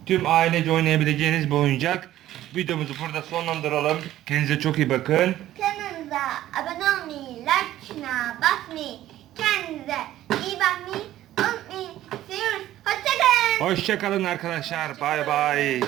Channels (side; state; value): left; quieter; 13.7 dB